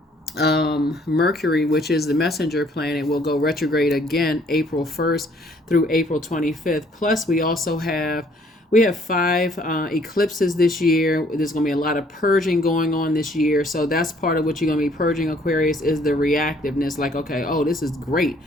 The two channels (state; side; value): normal; both; correlation 0.62